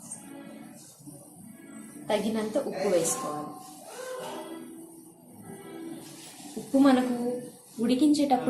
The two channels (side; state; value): both; identical; correlation 1.00